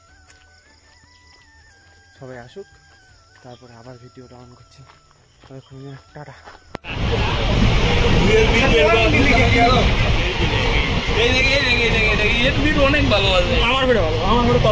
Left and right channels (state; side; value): identical; both; correlation 1.00